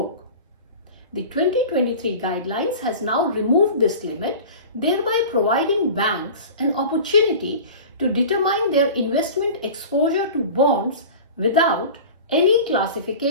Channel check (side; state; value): both; inverted; correlation -0.36